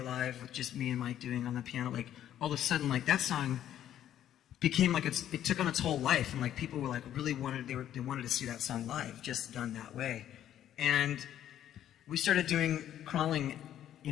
live with just me and Mike doing on the piano, like all of a sudden like that song became like it took on its whole life, and like people were like really they wanted to see that song live, just done that way. And we started doing Crawling,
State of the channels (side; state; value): right; quieter; 11.2 dB